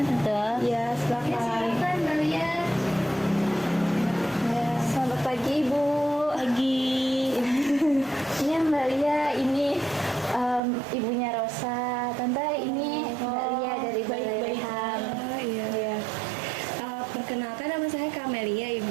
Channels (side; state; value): left; drops out; at 10.6 s